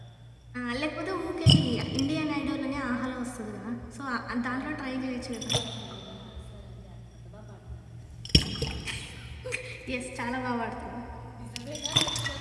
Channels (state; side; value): identical; both; correlation 1.00